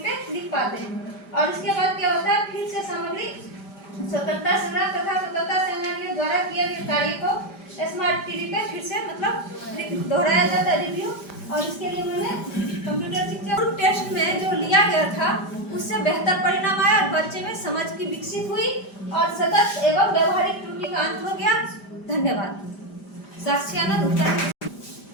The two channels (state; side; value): late; right; 5.0 ms